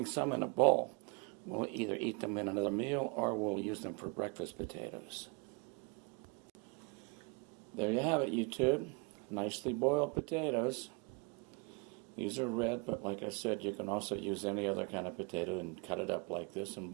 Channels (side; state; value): left; quieter; 31.8 dB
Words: some in a bowl. We'll either eat them in another meal or we'll use them for breakfast potatoes. There you have it, YouTube. Nicely boiled potatoes. These are red, but like I said, you can also use any other kind of potato and cut it up like this and